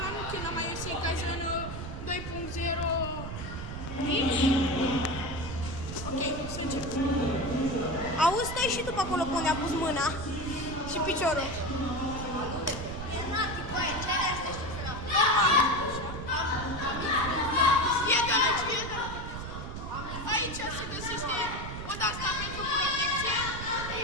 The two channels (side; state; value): right; noise; rumble, 7 dB below the sound